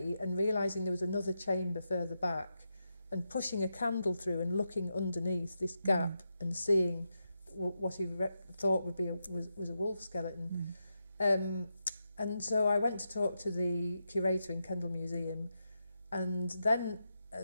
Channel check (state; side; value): inverted; both; correlation -0.87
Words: and realising there was another chamber further back and pushing a candle through and looking underneath this gap and seeing what he thought would be was a wolf skeleton. And so I went to talk to the curator in Kendal Museum, and then